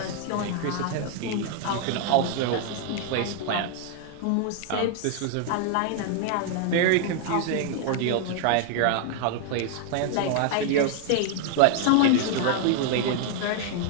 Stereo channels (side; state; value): both; different; correlation 0.00